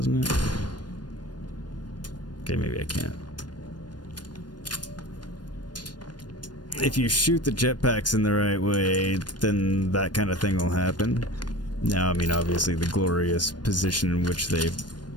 it? Okay, maybe I can't. If you shoot the jetpacks in the right way, then that kind of thing will happen. Now, I mean, obviously the glorious position in which they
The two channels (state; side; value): late; right; 0.70 ms